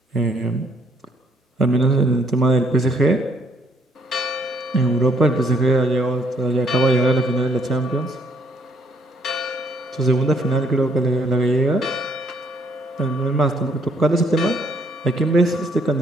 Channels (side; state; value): both; normal; correlation 0.68